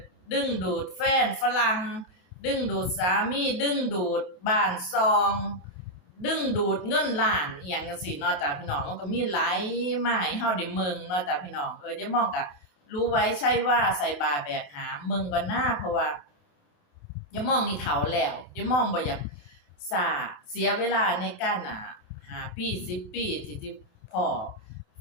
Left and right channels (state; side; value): late; right; 28 ms